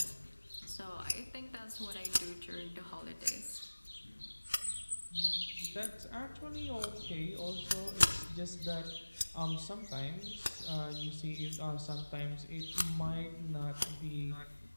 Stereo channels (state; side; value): inverted; both; correlation -1.00